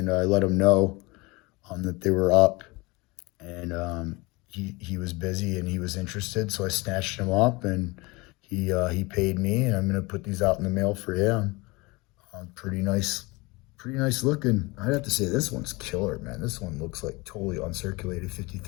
I let him know that they were up, and he was busy and he was interested, so I snatched him up, and he paid me, and I'm gonna put these out in the mail for him. Pretty nice looking. I'd have to say this one's killer, man. This one looks like totally uncirculated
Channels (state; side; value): quieter; right; 24.6 dB